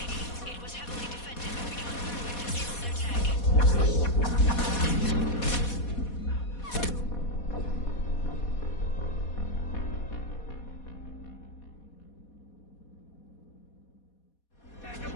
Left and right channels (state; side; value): late; right; 4.2 ms